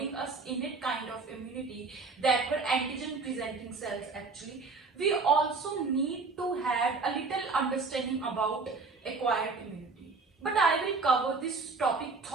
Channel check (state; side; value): quieter; left; 4.1 dB